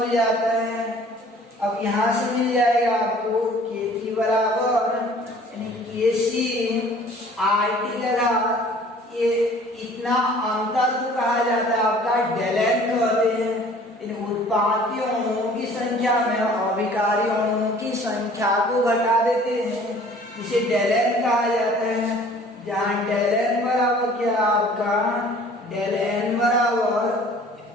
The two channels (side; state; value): both; normal; correlation 0.51